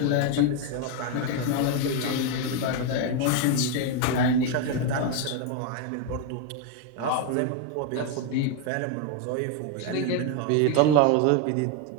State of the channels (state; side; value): different; both; correlation 0.01